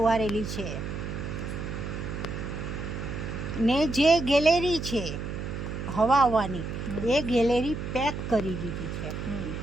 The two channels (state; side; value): noise; right; hum, 5 dB below the sound